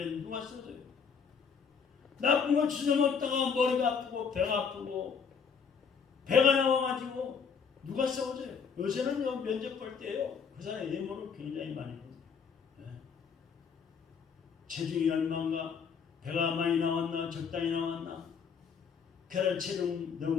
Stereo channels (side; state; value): right; quieter; 6.3 dB